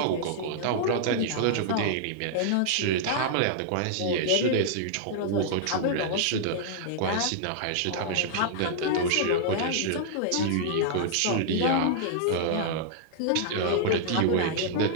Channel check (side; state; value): both; different; correlation -0.01